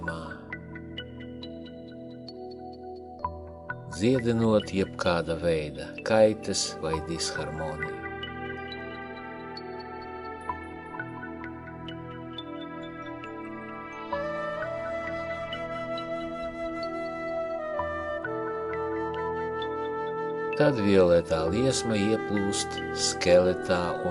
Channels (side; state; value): both; identical; correlation 1.00